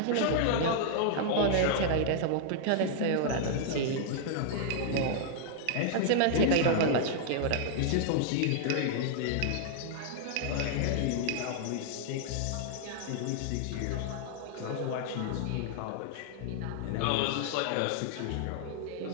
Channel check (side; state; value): both; different; correlation -0.01